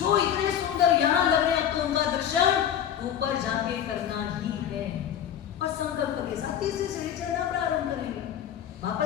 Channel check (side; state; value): right; quieter; 9.7 dB